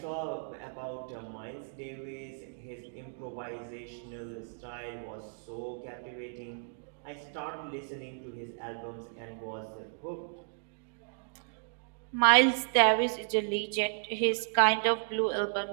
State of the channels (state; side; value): silent; left; digital silence